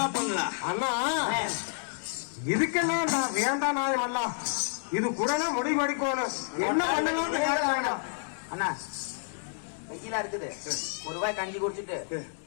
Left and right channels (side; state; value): right; silent; digital silence